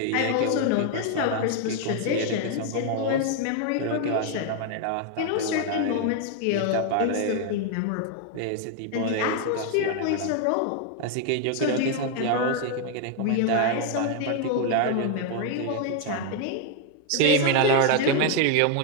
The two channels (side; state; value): both; different; correlation 0.00